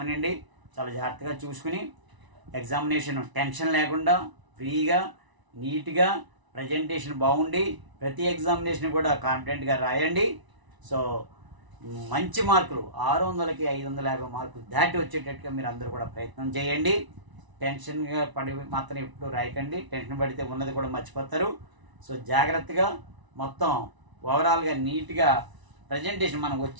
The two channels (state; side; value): late; left; 1.0 ms